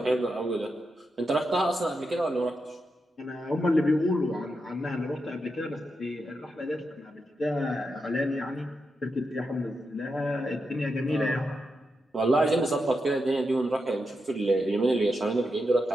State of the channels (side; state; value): both; normal; correlation 0.86